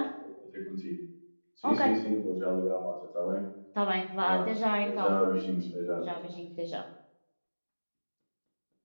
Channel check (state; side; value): inverted; both; correlation -1.00